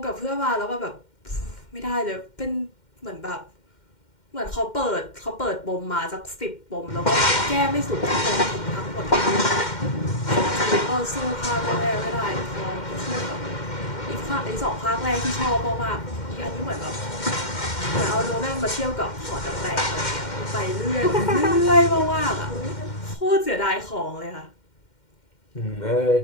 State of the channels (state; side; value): late; right; 2.1 ms